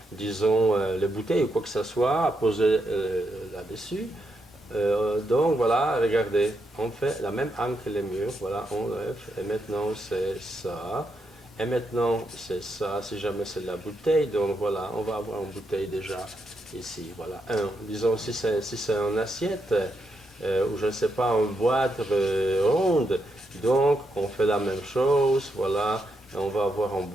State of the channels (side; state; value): both; normal; correlation 0.81